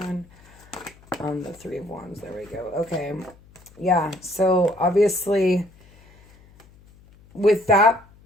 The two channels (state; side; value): noise; left; hum, 26 dB below the sound